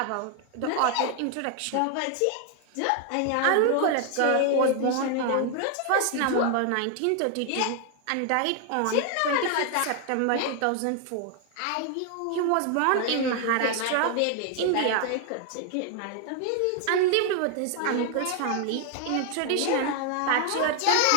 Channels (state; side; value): different; both; correlation 0.00